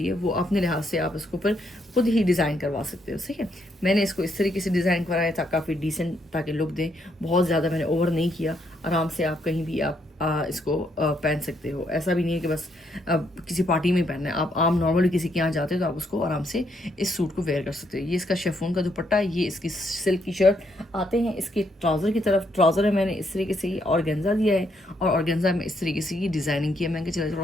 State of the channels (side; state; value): both; normal; correlation 0.74